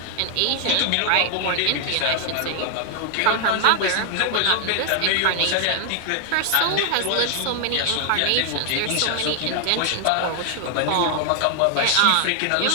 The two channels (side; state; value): both; different; correlation 0.00